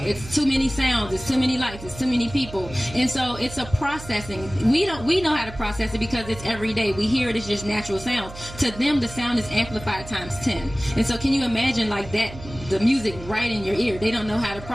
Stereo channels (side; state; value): right; noise; hum, 14 dB below the sound